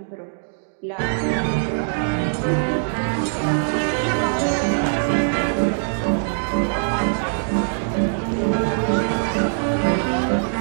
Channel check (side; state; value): left; silent; digital silence